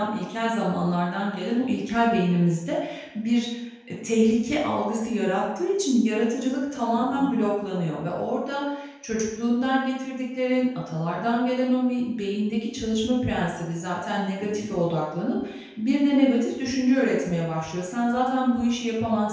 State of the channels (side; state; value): both; identical; correlation 1.00